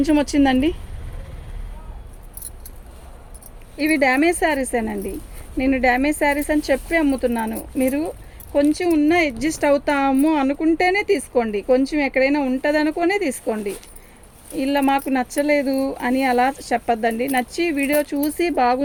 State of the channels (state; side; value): identical; both; correlation 1.00